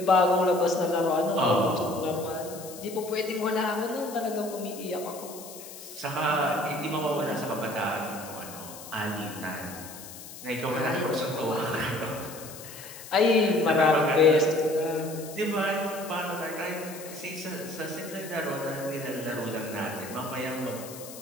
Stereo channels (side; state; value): left; noise; hiss, 14 dB below the sound